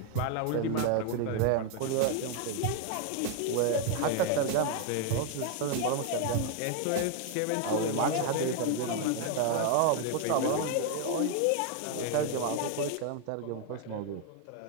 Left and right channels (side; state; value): both; different; correlation 0.01